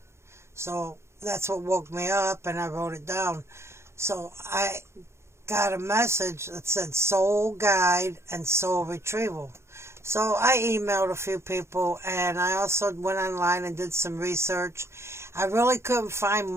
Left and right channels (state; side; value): late; left; 0.13 ms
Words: So that's what woke me up, and I wrote it down. So I got a message that said soul guide and soul retrieval. So I emailed a few people, and I also went online and did some research. I really couldn't find